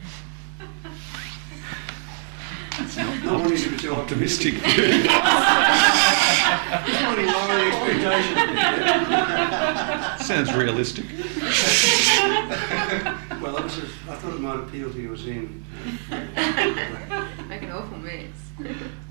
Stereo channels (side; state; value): left; silent; 63 dB below the other